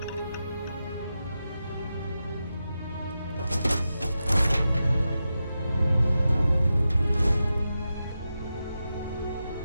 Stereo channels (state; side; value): inverted; both; correlation -0.90